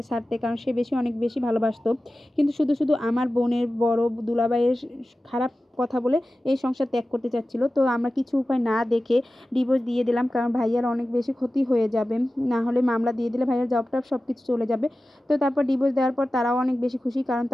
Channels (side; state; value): both; normal; correlation 0.95